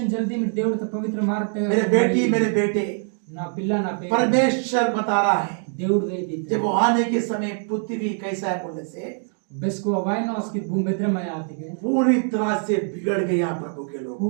जल्दी में देवड़ तो पवित्र मार्ग ते मेरे बेटी मेरे बेटे, ना पिल्ला ना पे परमेश्वर बता रहा है देवड़ वे दी जब वो आने के समय पृथ्वी कैसा है बोलने से बस को वाई ना उसकी भूमि भद्र में आती है पूरी तरह से बिगड़ गया प्रभु के लोग।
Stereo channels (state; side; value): silent; left; 55 dB below the other